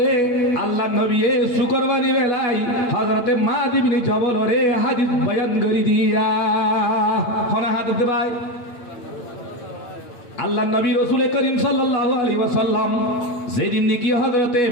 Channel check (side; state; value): right; late; 8.7 ms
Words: আল্লাহ নবী এ শুকরবানি বেলাই হযরতে মাদ ইবনে জবল রে হাদিস বয়ান করি দিয়া কোন হাদিস দে ভাই আল্লাহ নবী রাসূল করিম সাল্লাল্লাহু আলাইহি ওয়াসাল্লাম যেদিন নাকি হযরতে